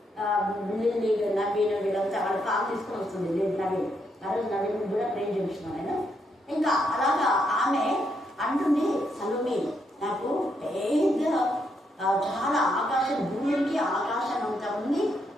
నవీన్ వీళ్ళంతా వాళ్ళ కాలు తీసుకుని వస్తుంది నవీన్. ఆ రోజు నవీన్ కూడా ప్రేమ్ చేయించిన నేను. ఇంకా అలాగా ఆమె అంటుంది, సలోమి నాకు పెద్ద చాలా ఆకాశం, భూమికి ఆకాశం అంతా ఉంది,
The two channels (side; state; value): both; normal; correlation 0.78